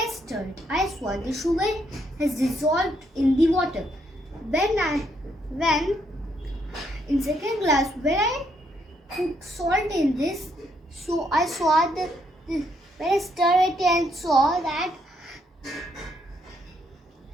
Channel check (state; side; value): normal; both; correlation 0.74